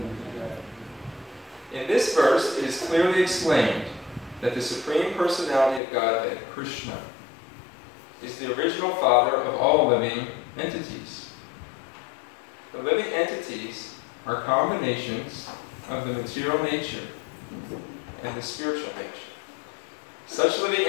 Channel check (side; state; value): right; drops out; at 5.8 s